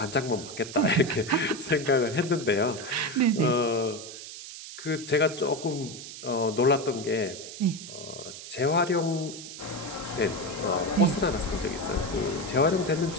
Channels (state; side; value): noise; right; hiss, 12 dB below the sound